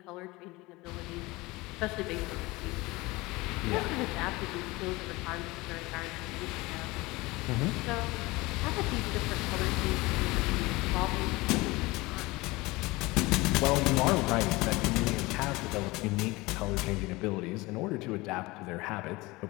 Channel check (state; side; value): quieter; right; 22.0 dB